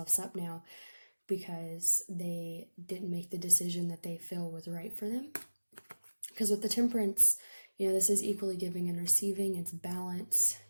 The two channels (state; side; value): inverted; both; correlation -1.00